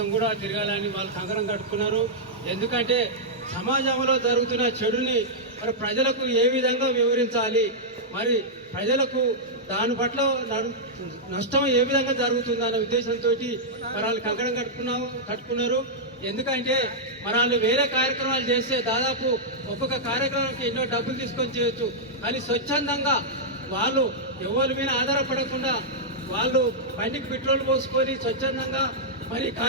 కూడా తిరగాలని వాళ్ళు కంకణం కట్టుకున్నారు. ఎందుకంటే సమాజంలో జరుగుతున్న చెడుని మరి ప్రజలకు ఏ విధంగా వివరించాలి, మరి ప్రజలకు దాని పట్ల నష్టం ఏ విధంగా జరుగుతుందన్న ఉద్దేశంతో మరి వాళ్ళు కంకణం కట్టుకున్నారు. ఎందుకంటే మరి వాళ్ళు వేరే కార్యక్రమాలు చేస్తే దాదాపు ఒక్కొక్క కార్యక్రమానికి ఎన్నో డబ్బులు తీసుకొని చేయొచ్చు. కానీ స్వచ్ఛందంగా వాళ్ళు ఎవరి మీద ఆధారపడకుండా వాళ్ళు బండికి పెట్రోల్ పోసుకొని స్వచ్ఛందంగా మరి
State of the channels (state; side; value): normal; both; correlation -0.09